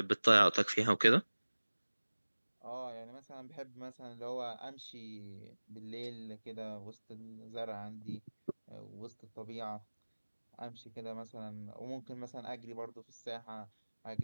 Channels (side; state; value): both; inverted; correlation -1.00